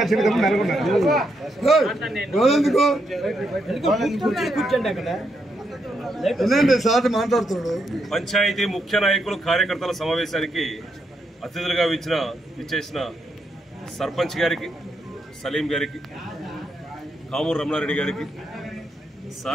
పంచాయతీ ముఖ్య నాయకులు కార్యకర్తల సమావేశానికి అతిథులుగా విచ్చేసిన సర్పంచ్ గారికి, సలీం గారికి, కామూరు రమణారెడ్డి గారికి,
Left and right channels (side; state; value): both; normal; correlation 0.80